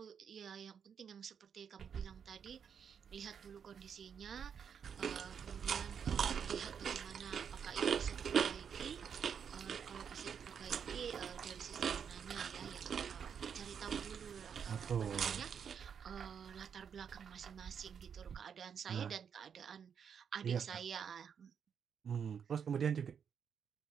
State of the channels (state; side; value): quieter; left; 7.4 dB